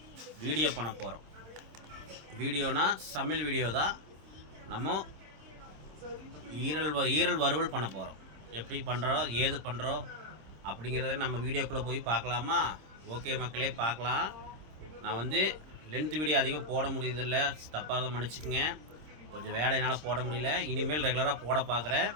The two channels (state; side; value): late; left; 26 ms